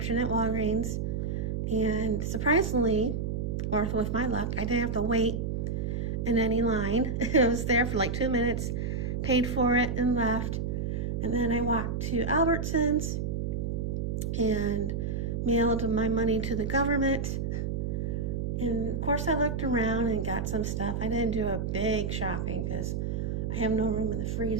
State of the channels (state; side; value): noise; right; hum, 1 dB below the sound